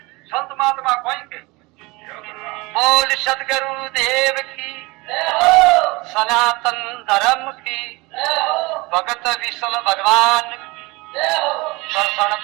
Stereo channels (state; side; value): quieter; left; 24.0 dB